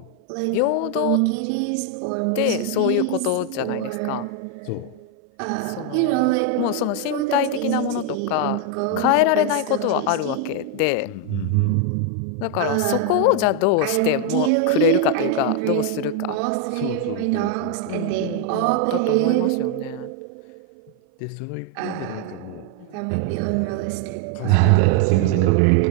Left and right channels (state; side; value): different; both; correlation 0.01